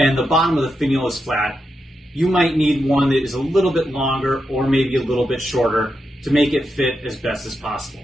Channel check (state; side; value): normal; both; correlation 0.86